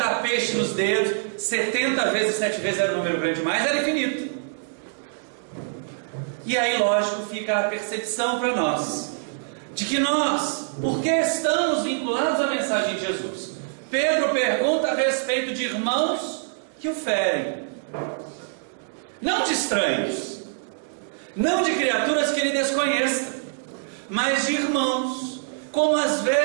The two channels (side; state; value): left; silent; 62 dB below the other